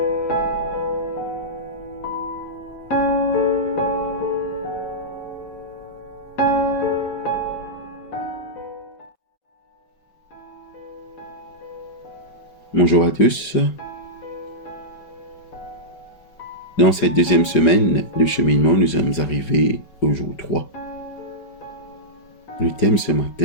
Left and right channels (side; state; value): right; late; 5.3 ms